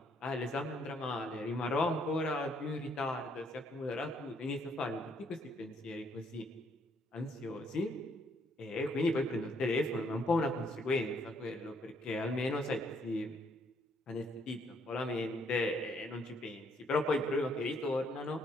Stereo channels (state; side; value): normal; both; correlation 0.69